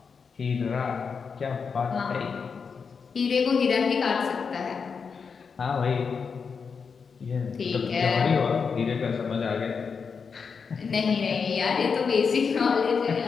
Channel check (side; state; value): right; quieter; 5.7 dB